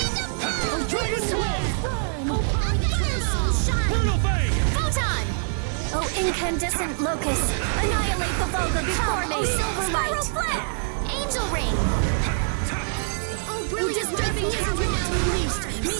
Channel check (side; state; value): left; silent; 62 dB below the other